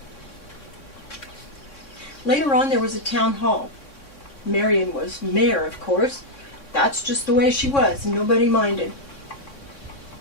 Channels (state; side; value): late; right; 3.6 ms